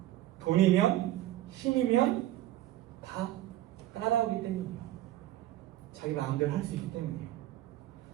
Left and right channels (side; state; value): left; quieter; 14.3 dB